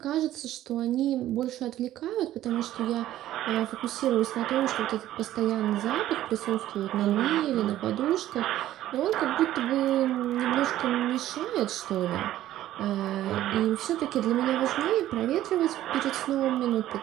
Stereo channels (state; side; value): quieter; left; 13.5 dB